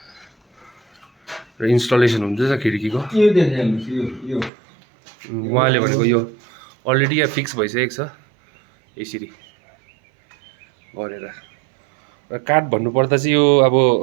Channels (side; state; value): left; drops out; at 4.5 s